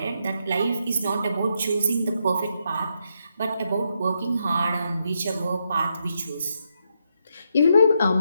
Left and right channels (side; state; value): both; inverted; correlation -0.80